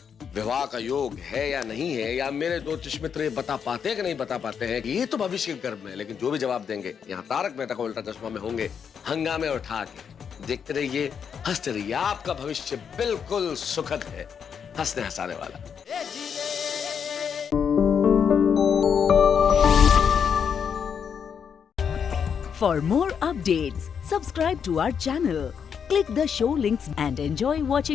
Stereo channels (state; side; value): quieter; right; 7.2 dB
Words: विवाह का योग है या नहीं है, या मेरे ज्योतिष मित्र ये बता पाते हैं कि नहीं बता पाते हैं, ये तो भविष्य के गर्भ में है। लेकिन जो भी जवाब देंगे यहाँ तारक मेहता का उल्टा चश्मा में होंगे हंगामे और ठाके। देखते रहिए, हंसते रहिए, आपका भविष्य बिल्कुल सुखद है, हंसने हंसाने वाला। For more updates, subscribe to our channel, click the show links and enjoy